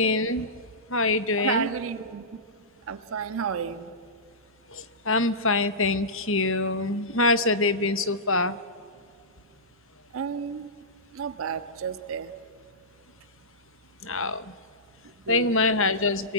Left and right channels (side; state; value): both; normal; correlation -0.17